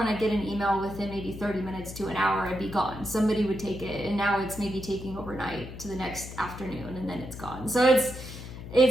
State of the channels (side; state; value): left; noise; hum, 11 dB below the sound